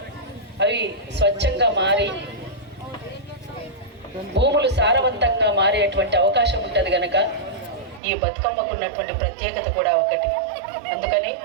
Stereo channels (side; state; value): left; drops out; at 8.0 s